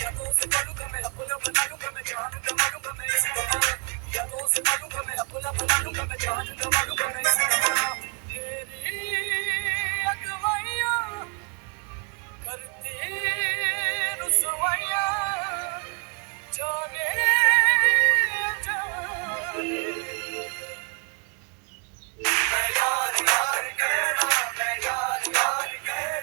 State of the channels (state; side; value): quieter; left; 34.3 dB